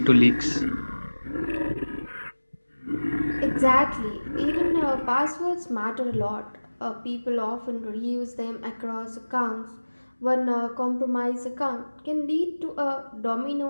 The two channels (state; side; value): inverted; both; correlation -1.00